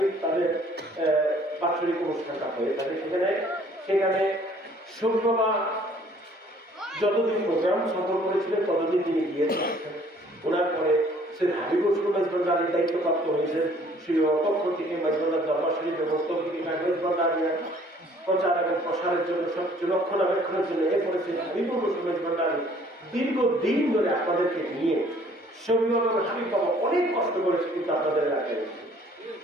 তাদের বাৎসরিক অনুষ্ঠানটা হয়ে থাকে সেখানে শরীফ বাবা যতদিন প্রোগ্রাম সফল করেছিলেন ততদিন তিনি গিয়েছেন ওনার পরে সৈয়দ হাবিবুর রহমান ভান্ডারীর দায়িত্বপ্রাপ্ত হয়েছেন সেই পক্ষ থেকে মাইজবান্ডার দরবার শরীফ এবং তৌহিদি কাগজ ভান্ডারীর প্রচার এবং প্রসারের জন্য সবকিছু রক্ষণাবেক্ষণের জন্য এরপরে সৈয়দ হাবিবুর রহমান ভান্ডারী দীর্ঘদিন ধরে আপনাদেরকে নিয়ে শরীফ এবং হাবিব বাবা অনেক কষ্ট করেছে কিন্তু আপনাদের এলাকায়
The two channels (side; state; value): both; normal; correlation 0.57